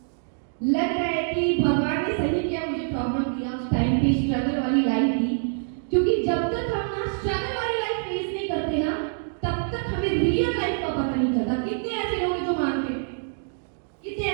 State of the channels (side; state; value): left; silent; digital silence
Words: लग रहा है कि भगवान ने सही किया मुझे प्रॉब्लम दिया उस टाइम पे, स्ट्रगल वाली लाइफ थी। क्योंकि जब तक हम ना स्ट्रगल वाली लाइफ फेस नहीं करते ना, तब तक हमें रियल लाइफ का पता नहीं चलता। कितने ऐसे लोग हैं जो मानते, कितने